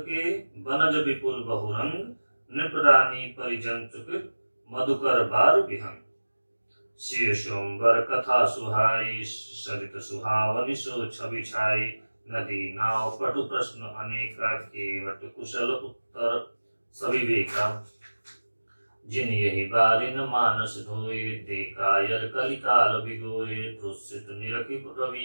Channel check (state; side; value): inverted; both; correlation -1.00